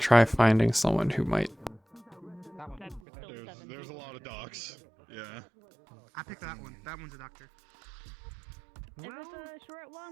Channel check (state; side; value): drops out; left; at 3.0 s